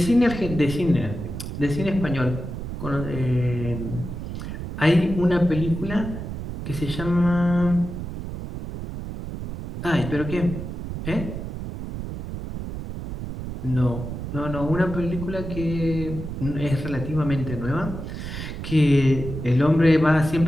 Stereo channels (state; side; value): noise; right; rumble, 7 dB below the sound